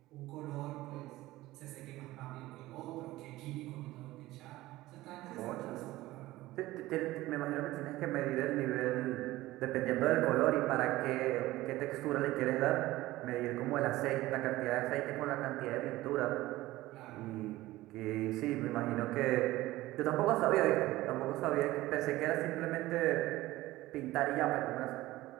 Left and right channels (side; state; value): left; quieter; 17.4 dB